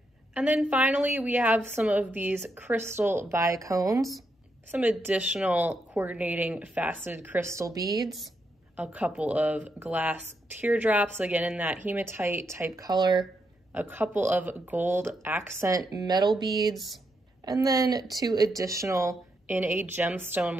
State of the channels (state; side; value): normal; both; correlation 0.81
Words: And then finally, we have some of these crystal bicones. some additional coordinating faceted crystal beads, a couple of glass teardrops, again in that hematite type color, a couple of gold accent metal beads, and then 2 additional in a